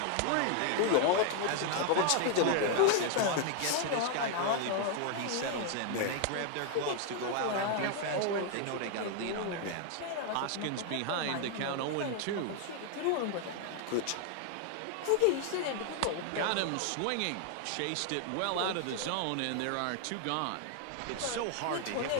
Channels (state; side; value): different; both; correlation 0.00